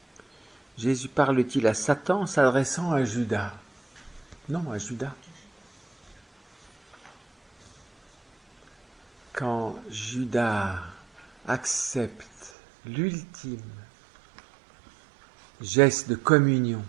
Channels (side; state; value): left; drops out; at 12.5 s